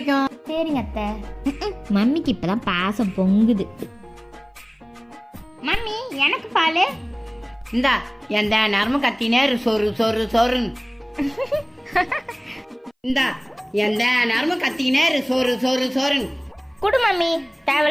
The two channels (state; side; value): identical; both; correlation 1.00